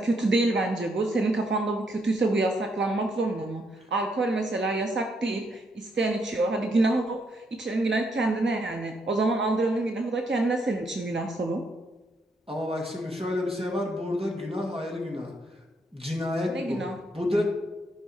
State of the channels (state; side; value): normal; both; correlation 0.75